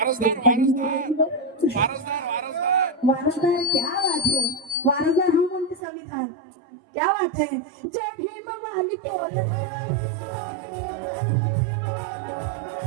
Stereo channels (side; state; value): left; drops out; at 5.8 s